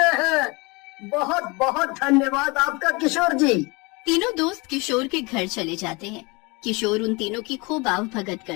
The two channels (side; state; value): right; quieter; 26.8 dB